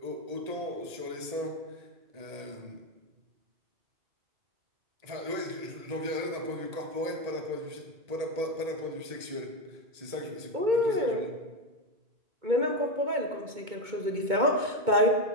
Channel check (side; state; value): left; late; 2.2 ms